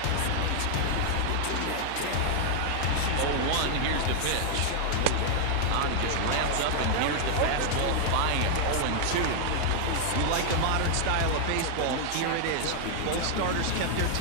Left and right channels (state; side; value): different; both; correlation 0.00